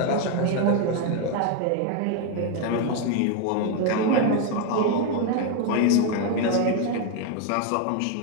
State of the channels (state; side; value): different; both; correlation 0.01